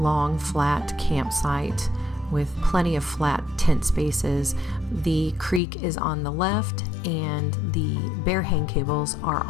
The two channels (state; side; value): drops out; right; at 5.6 s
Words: flat campsite with plenty of flat tent spaces. The creek is on the left and the bear hang cables are